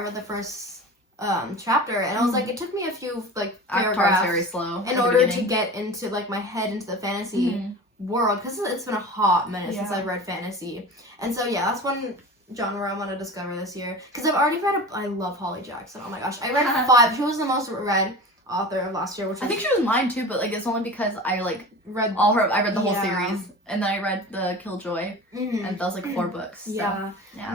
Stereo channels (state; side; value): normal; both; correlation 0.34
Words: the first chapter, and I was like, it took me a few like paragraphs very slow in order to get into like my head into the fantasy world, because it's been a hot minute since I've read fantasy. And so yeah, that's one genre I want to discover this year, because I've already read I love Holly Jackson. Oh my gosh, I read 5. She was the most read author of last year, which was, I think she was mine too, but like it's only because I like read I read the whole series, and then I read the Killjoy, and that was like 4 books. So, yeah. Yeah.